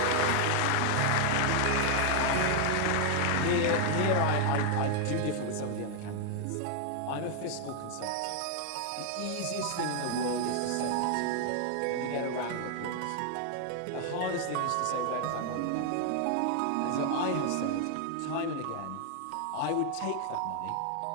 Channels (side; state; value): both; different; correlation 0.00